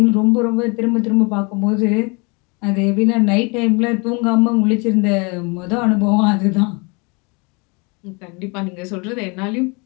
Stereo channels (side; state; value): right; quieter; 30.3 dB